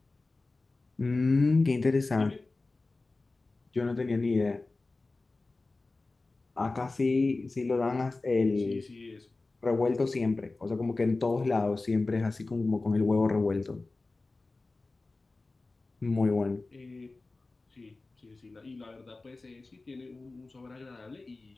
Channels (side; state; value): right; quieter; 3.4 dB